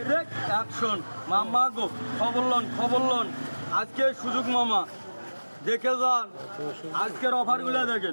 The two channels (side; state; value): both; inverted; correlation -1.00